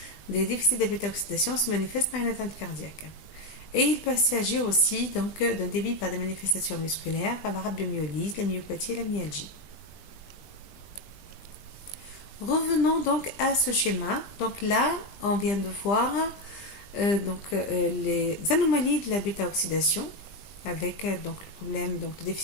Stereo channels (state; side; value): late; right; 20 ms